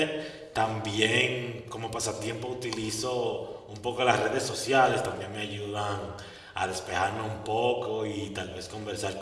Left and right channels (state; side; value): identical; both; correlation 1.00